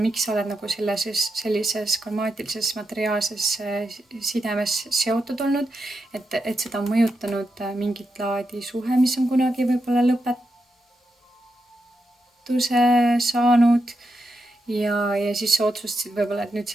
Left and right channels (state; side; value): normal; both; correlation 0.86